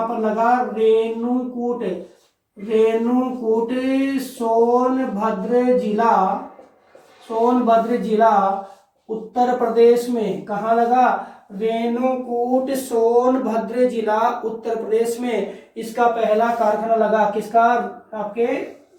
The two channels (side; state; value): both; identical; correlation 1.00